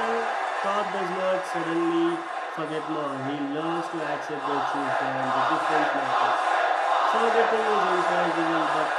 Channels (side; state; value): both; identical; correlation 1.00